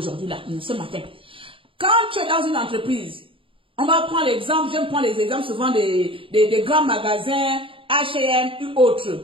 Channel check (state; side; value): late; left; 0.26 ms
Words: là, ce matin. Quand tu es dans une entreprise, on va prendre l'exemple, j'aime prendre les exemples souvent des grands magasins, H&M ou